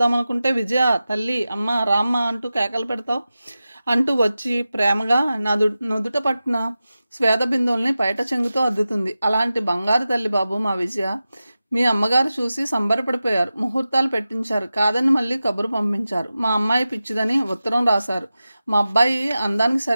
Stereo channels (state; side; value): inverted; both; correlation -0.94